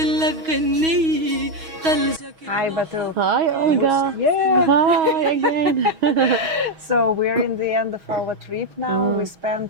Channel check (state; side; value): late; left; 6.3 ms